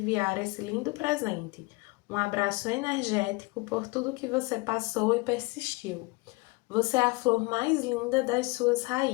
esse lindo presente. Um abraço energético por tudo que você passou e persistiu. Você é a flor mais linda das suas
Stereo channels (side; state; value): right; quieter; 25.2 dB